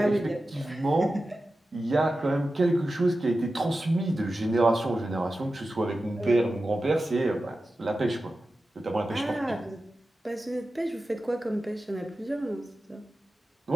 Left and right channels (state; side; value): normal; both; correlation 0.93